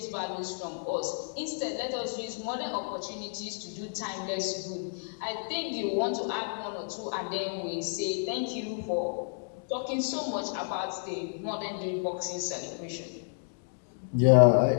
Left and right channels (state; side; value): silent; right; digital silence